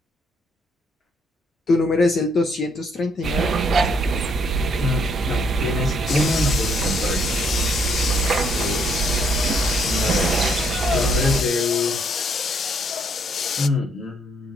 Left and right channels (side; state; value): both; normal; correlation 0.70